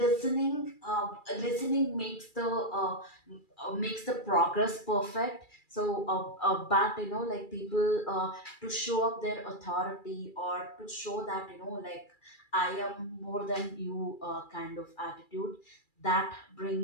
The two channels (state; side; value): late; right; 2.3 ms